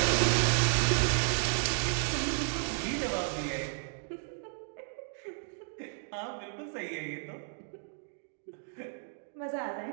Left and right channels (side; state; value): left; silent; digital silence